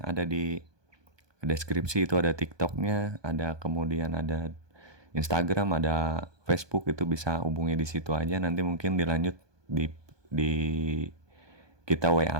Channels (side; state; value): left; late; 1.2 ms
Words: ada di deskripsi itu ada TikToknya, ada kemudian ada Instagram, ada Facebook, itu bisa hubungi di situ aja. Nanti mungkin dilanjut di kita